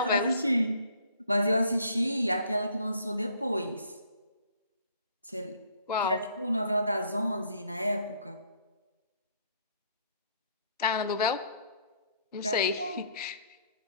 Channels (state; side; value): inverted; both; correlation -0.63